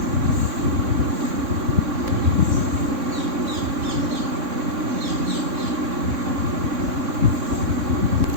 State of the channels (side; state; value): left; late; 3.6 ms